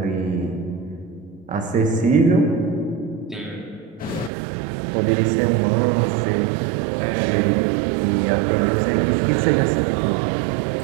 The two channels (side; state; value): left; drops out; at 4.3 s